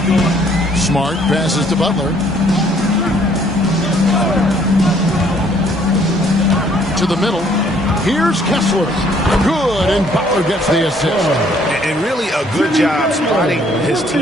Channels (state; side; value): normal; both; correlation 0.63